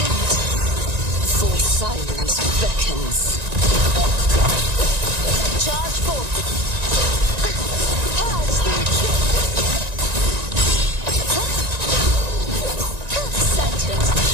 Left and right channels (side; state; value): left; late; 1.9 ms